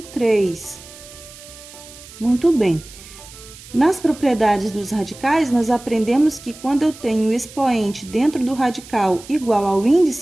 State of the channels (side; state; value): right; noise; hiss, 18 dB below the sound